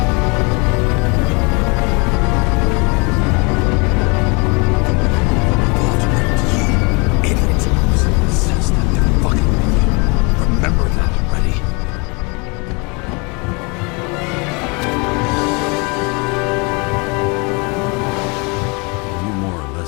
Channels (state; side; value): quieter; right; 30.3 dB